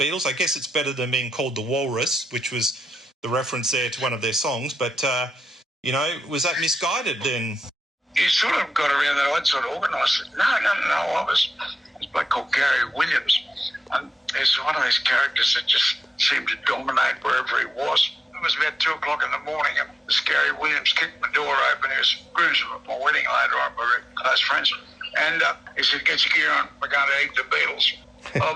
I guess it's better than being called the Walrus, which was the reference there to one of their songs. But, was that misguided then? You sort of got around that. I'd sort of organised it. No. I was a bloke called Gary Williams. And he's one of those characters that just seemed to dominate wherever he was. It was about 2 o'clock in the morning, and this Gary Williams kicked my door open. He was groomsman at my wedding later on. We were close friends. And he said, "Get your gear on. We're going to eat the Beatles." "Oh,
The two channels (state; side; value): normal; both; correlation 0.92